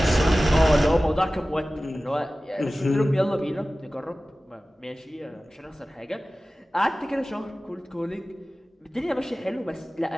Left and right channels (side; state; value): both; normal; correlation 0.96